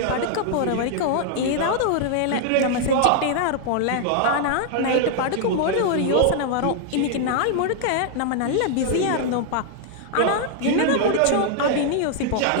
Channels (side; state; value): both; different; correlation 0.00